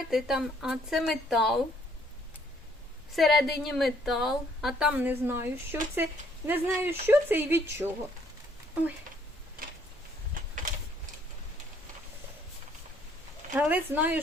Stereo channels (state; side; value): normal; both; correlation 0.65